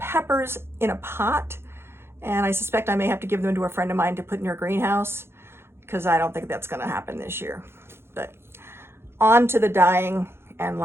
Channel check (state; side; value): late; left; 0.12 ms